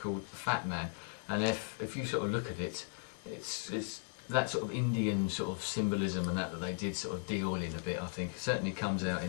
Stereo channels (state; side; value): silent; right; 53 dB below the other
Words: Fat Man, and if you sort of look at it, it's that sort of Indian sort of symbolism and that they did sort of deal in a bit. I think it certainly comes out in